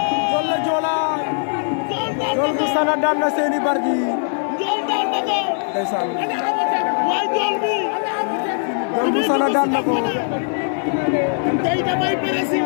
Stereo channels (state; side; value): silent; right; 59 dB below the other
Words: Ndiol la Joola Ndiol bu Sana daan na Séni Bargny Ndiol daan na ko ndeysaan waay Ndiol bi Ndiol bu Sana daan na ko tey damay presi